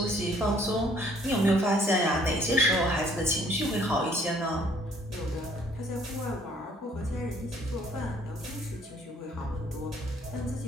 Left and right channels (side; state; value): both; normal; correlation 0.61